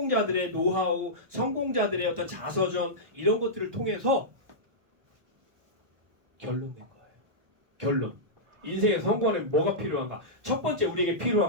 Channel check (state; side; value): late; left; 1.1 ms